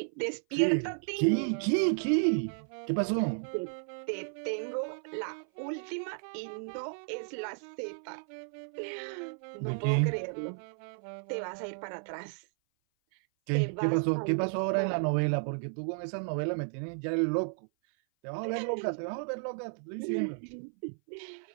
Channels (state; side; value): silent; left; 56 dB below the other